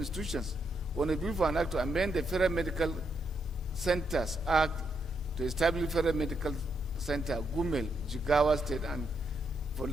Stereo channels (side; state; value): both; normal; correlation 0.79